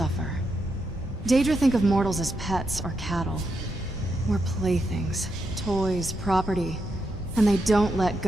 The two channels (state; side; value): normal; both; correlation 0.83